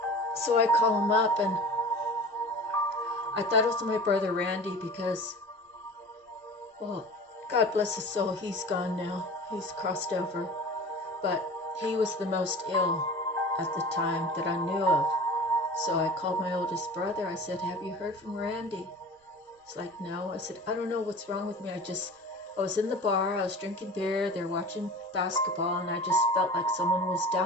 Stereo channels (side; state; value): both; normal; correlation 0.38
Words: So I call him up, and I thought it was my brother Randy because, well, God bless his soul, he's gone now. He's crossed over. But he was the most ill at the time that I knew of. So I called my oldest brother. I said, have you heard from Randy? He's like, no. I said, I don't know what's wrong with me. I was in the bar. I was drinking beer. They're watching basketball. And I just felt like someone was